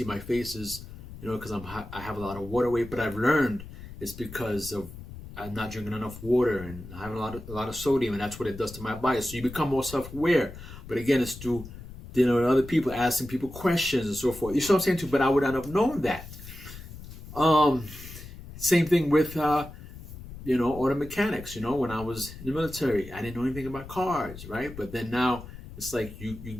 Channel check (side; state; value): left; noise; rumble, 14 dB below the sound